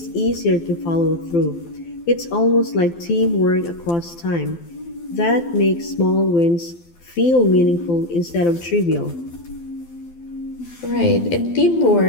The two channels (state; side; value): late; right; 12 ms